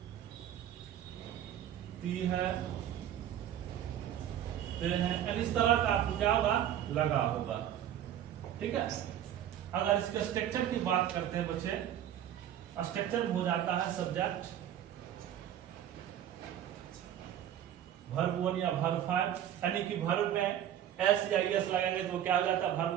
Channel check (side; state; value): left; quieter; 10.8 dB